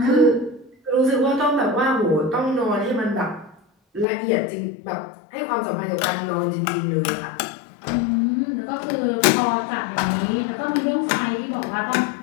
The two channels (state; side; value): drops out; right; at 4.0 s